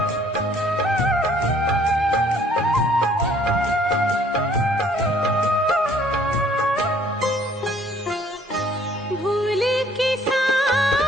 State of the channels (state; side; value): normal; both; correlation 0.60